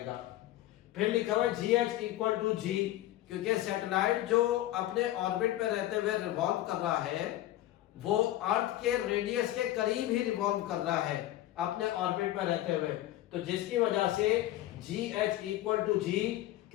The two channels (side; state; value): right; quieter; 14.7 dB